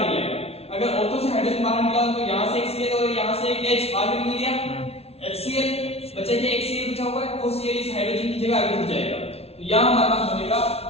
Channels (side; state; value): right; late; 0.30 ms